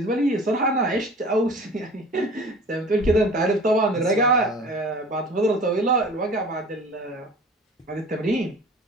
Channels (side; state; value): both; normal; correlation 0.43